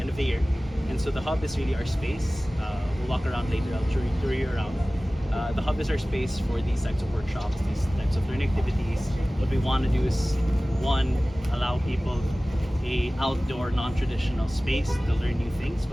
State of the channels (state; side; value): normal; both; correlation 0.97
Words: of the year. And so the hub is really our space. We'll walk around later, I'll tour you around. The hub is our space for these types of workshops, these types of learning activities. What we want to do is, one, allow people a outdoor, non-traditional space to learn new things,